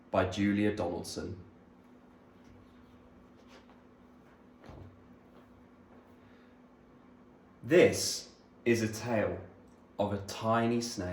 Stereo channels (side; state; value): both; identical; correlation 1.00